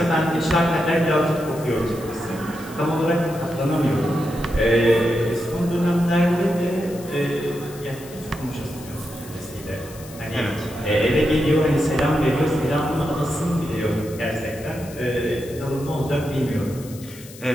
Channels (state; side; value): noise; left; hiss, 18 dB below the sound